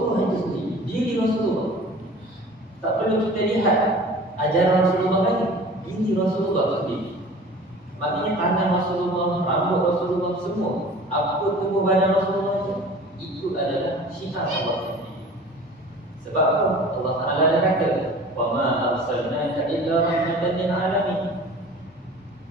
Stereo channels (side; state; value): both; normal; correlation 0.43